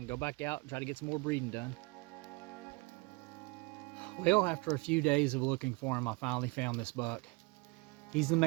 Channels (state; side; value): quieter; left; 27.9 dB